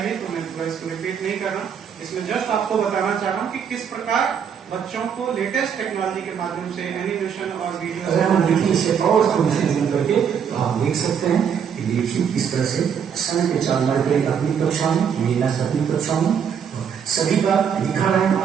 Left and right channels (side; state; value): left; quieter; 7.6 dB